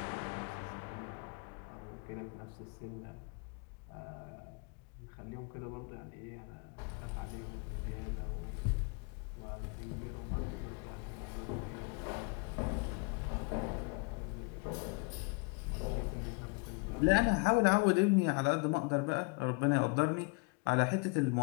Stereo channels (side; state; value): right; quieter; 30.5 dB